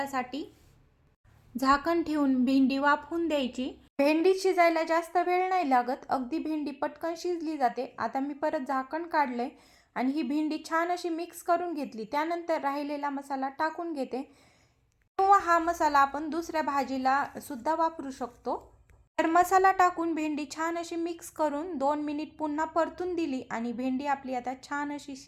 झाकण ठेवून भेंडी वाफवून द्यायची। भेंडी शिजायला जास्त वेळ नाही लागत, अगदी भेंडी पटकन शिजली जाते। आता मी परत झाकण काढले आणि ही भेंडी छान अशी मिक्स करून घेतली। त्यानंतर राहिलेला मसाला टाकून घेते, किंवा हा मसाला आपण दुसऱ्या भाजीला सुद्धा वापरू शकतो। तर मसाला टाकून भेंडी छान अशी मिक्स करून 2 मिनिट पुन्हा परतून दिली आणि भेंडी आपली आता छान अशी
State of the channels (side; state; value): both; identical; correlation 1.00